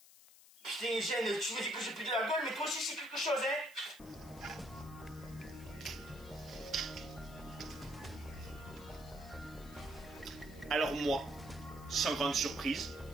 Putain, Gêne, tu me dis que j'ai plus de la gueule, mais toi aussi c'est quelque chose, hein. Alors moi, sans grande surprise,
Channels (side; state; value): left; noise; hiss, 21 dB below the sound